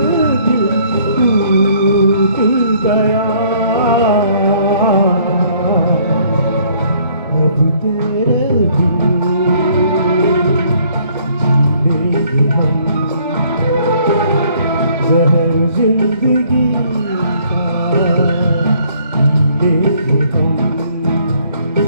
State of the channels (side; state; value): both; inverted; correlation -0.62